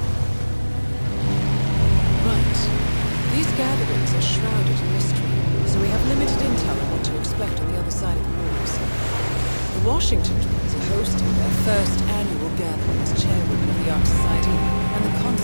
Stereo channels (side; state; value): both; inverted; correlation -1.00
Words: Right. These gatherings are shrouded in mystery, so we have limited intel on what to expect on the other side of the walls. The Washington twins are hosting their first annual gathering as chairwomen of the Ark Society, and the